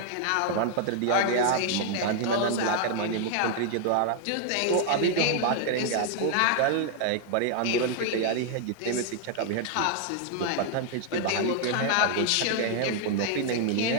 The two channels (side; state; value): both; different; correlation 0.00